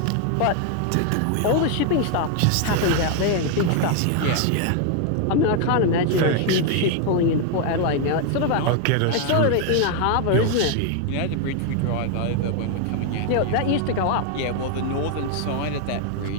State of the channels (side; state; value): both; different; correlation 0.00